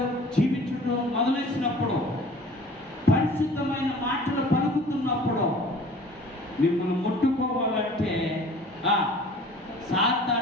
జీవించడం మొదలైనప్పుడు, పరిశుద్ధమైన మాటలు పలుకుతున్నప్పుడు, మిమ్మల్ని ముట్టుకోవాలంటే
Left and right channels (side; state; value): both; normal; correlation 0.47